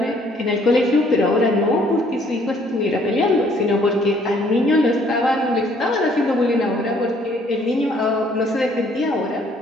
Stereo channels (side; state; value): both; normal; correlation 0.63